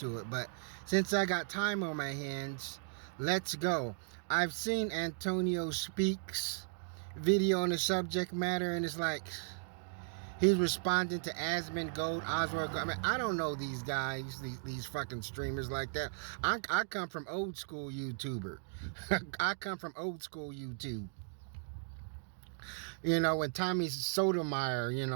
it. But since I got time on my hands, let's go. I've seen Antonio Speaks video on the subject matter, and it's like he's responding to Asmund Gold, Oswald Gold. I mean, I don't know these guys, these fucking streamers like that. I come from old school YouTuber. I come from old school YouTube. You know, when Tommy Sotomayor, you know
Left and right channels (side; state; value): left; silent; digital silence